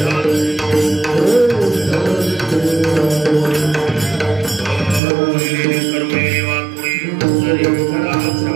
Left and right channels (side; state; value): left; drops out; at 5.0 s